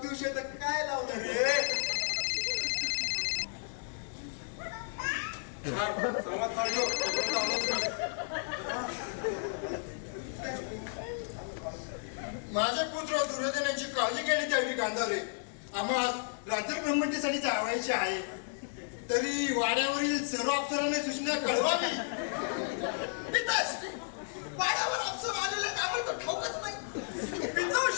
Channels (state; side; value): silent; right; digital silence